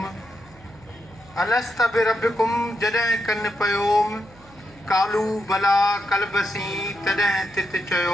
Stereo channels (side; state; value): right; noise; hum, 25 dB below the sound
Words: अलस्त बिरब्बिकुम जॾहिं कनि पयोम कालू भला कलबसी तॾहिं तित